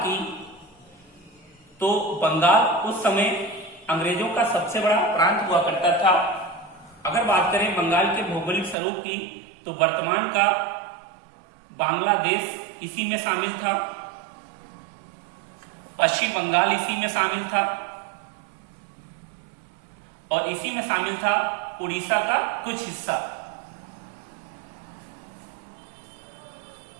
तो बंगाल उस समय अंग्रेजों का सबसे बड़ा प्रांत हुआ करता था। अगर बात करें बंगाल के भौगोलिक स्वरूप की, तो वर्तमान का बांग्लादेश इसी में शामिल था, पश्चिम बंगाल इसी में शामिल था, और इसी में शामिल था उड़ीसा का कुछ हिस्सा।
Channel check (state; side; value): drops out; left; at 8.8 s